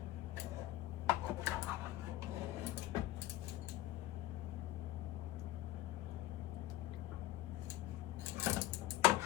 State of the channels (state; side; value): quieter; right; 15.0 dB